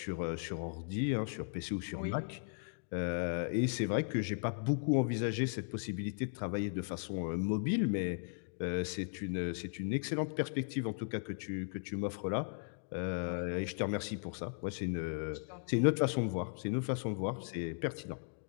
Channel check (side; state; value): right; silent; digital silence